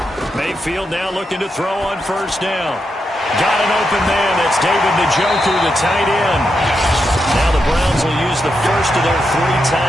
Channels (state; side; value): normal; both; correlation 0.84